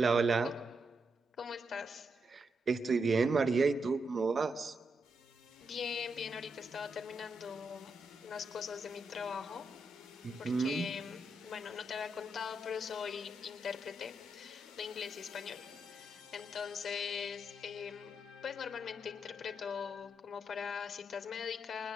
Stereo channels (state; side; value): normal; both; correlation 0.82